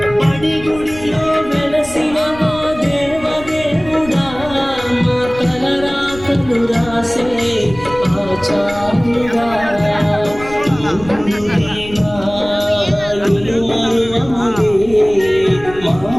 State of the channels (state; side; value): noise; left; rumble, 16 dB below the sound